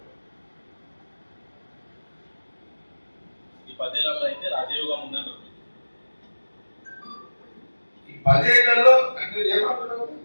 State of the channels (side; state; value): both; inverted; correlation -1.00